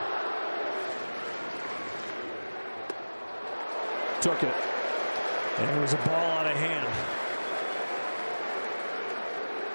Took it. And it was a ball out of hand.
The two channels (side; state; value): both; inverted; correlation -1.00